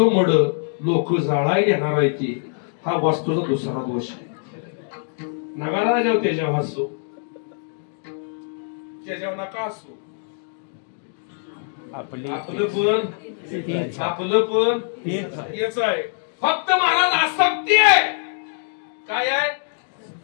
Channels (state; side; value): silent; right; 63 dB below the other